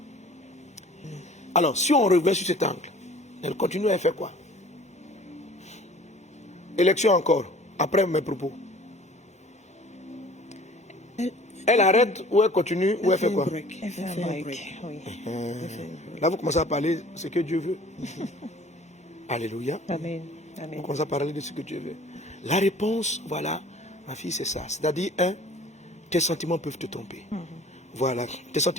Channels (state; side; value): normal; both; correlation 0.49